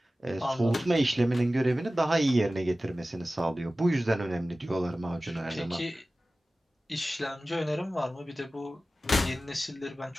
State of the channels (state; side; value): normal; both; correlation 0.96